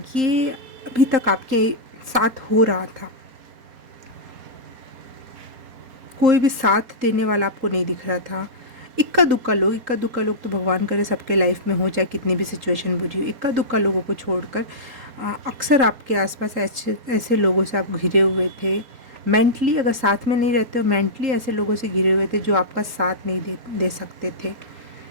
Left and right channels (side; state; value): left; late; 4.3 ms